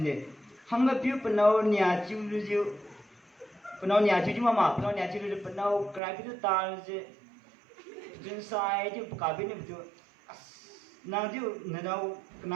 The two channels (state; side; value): drops out; left; at 6.0 s